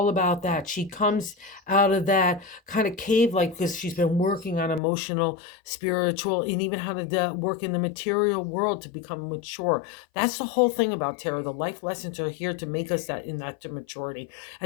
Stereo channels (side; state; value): right; drops out; at 4.8 s